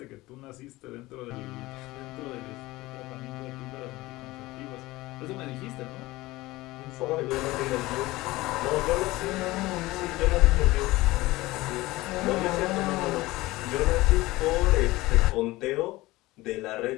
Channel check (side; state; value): right; quieter; 19.4 dB